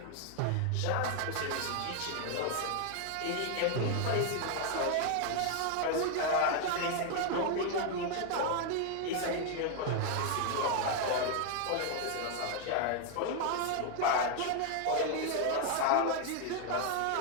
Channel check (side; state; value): both; different; correlation 0.01